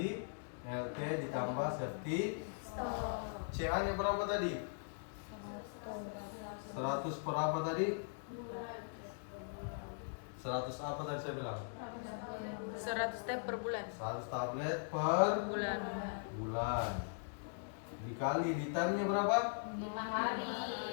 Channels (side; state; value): right; silent; digital silence